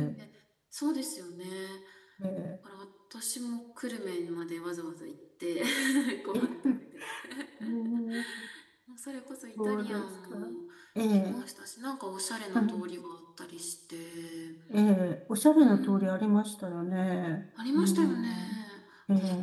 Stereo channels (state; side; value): identical; both; correlation 1.00